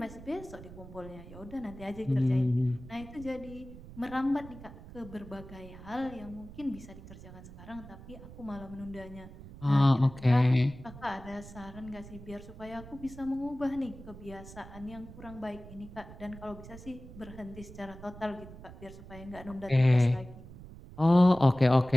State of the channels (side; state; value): right; noise; rumble, 16 dB below the sound